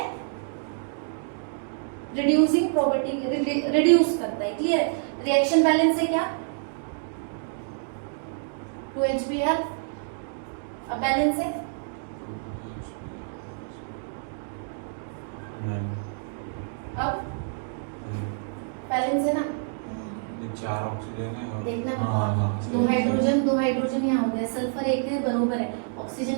रिड्यूसिंग प्रॉपर्टी, रिड्यूस करता है। क्लियर है? रिएक्शन बैलेंस है क्या? 2HBr। अब बैलेंस है अब बैलेंस है ना? ये 4 ऑक्सीजन है और देखना हाँ, दो हाइड्रोजन यहाँ हो गया, सल्फर 1 है, बरोबर है।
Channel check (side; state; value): left; silent; digital silence